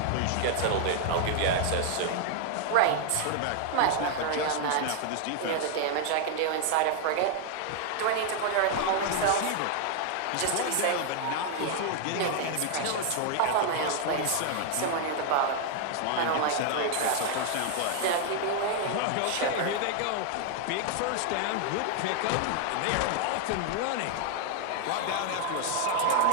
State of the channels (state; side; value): different; both; correlation 0.00